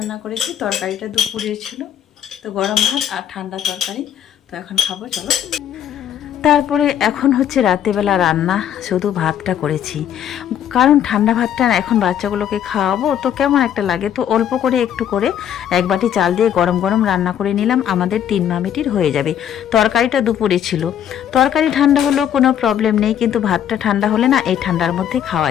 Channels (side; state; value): right; quieter; 9.9 dB